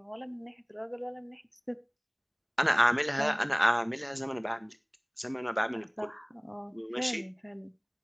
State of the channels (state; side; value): identical; both; correlation 1.00